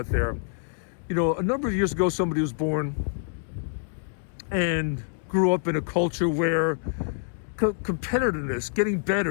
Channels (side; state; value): right; silent; digital silence